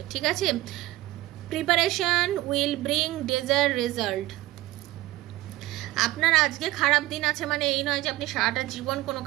ঠিক আছে? Preparation will bring desired result. আপনার আজকে খারাপ দিন আছে মানে এই নয় যে আপনি সারাটা জীবন কোনো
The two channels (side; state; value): left; quieter; 17.6 dB